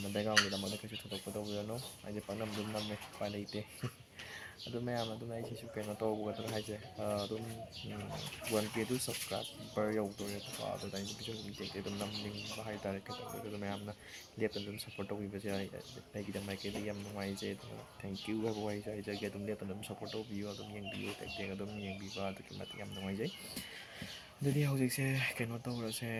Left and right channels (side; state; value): both; identical; correlation 1.00